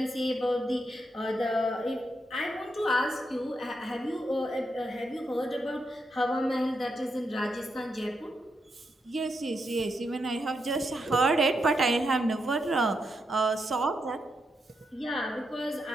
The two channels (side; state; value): both; normal; correlation 0.83